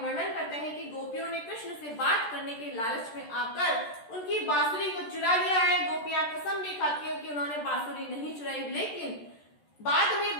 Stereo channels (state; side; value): late; right; 14 ms